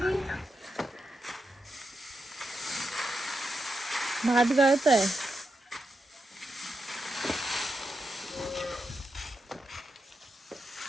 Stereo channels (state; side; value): normal; both; correlation 0.86